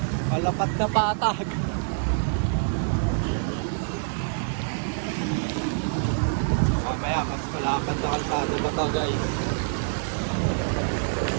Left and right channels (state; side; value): silent; left; 61 dB below the other